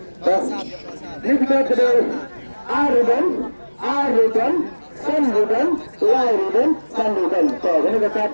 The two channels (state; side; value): inverted; both; correlation -1.00